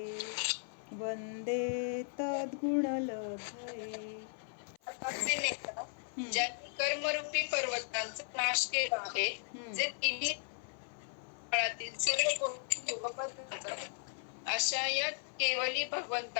वन्दे तद्गुणलब्धये. ज्यांनी कर्मरूपी पर्वतांचा नाश केला आहे, जे तिन्ही काळातील सर्व गोष्टी अशा या केवली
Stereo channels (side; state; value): right; silent; 53 dB below the other